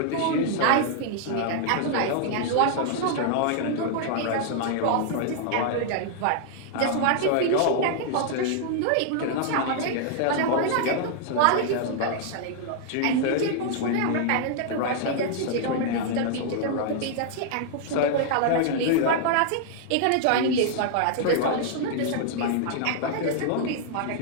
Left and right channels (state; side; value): different; both; correlation -0.01